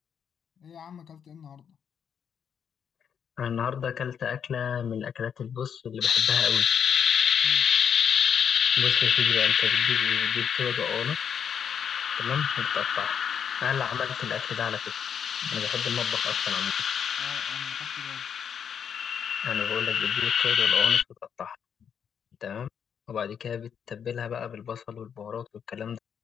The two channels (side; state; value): right; quieter; 7.7 dB